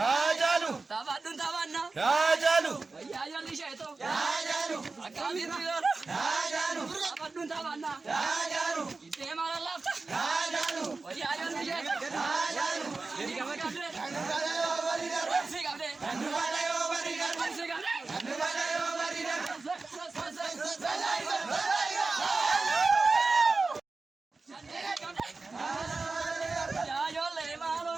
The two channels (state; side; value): quieter; left; 3.8 dB